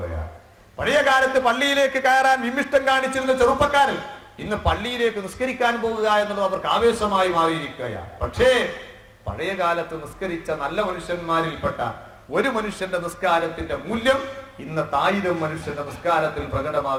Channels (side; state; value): both; identical; correlation 1.00